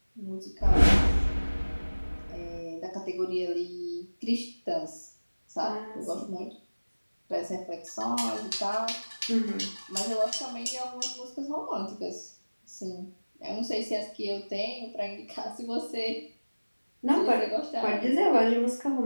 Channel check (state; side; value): inverted; both; correlation -1.00